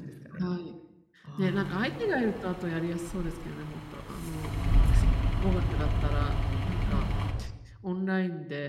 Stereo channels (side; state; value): both; identical; correlation 1.00